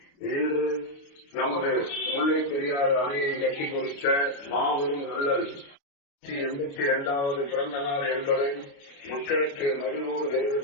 இன்று நமது முல்லை பெரியாறு அணையை கட்டி கொடுத்த மாபெரும் நல்லல் 82வது பிறந்த நாள் என்பதை மக்களுக்கு மகிழ்வோடு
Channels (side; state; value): right; late; 28 ms